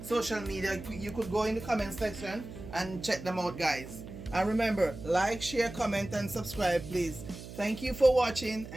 social media. You could go in the comment section and check them out, guys. And remember, like, share, comment and subscribe please. Thank you for watching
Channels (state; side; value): noise; right; hum, 13 dB below the sound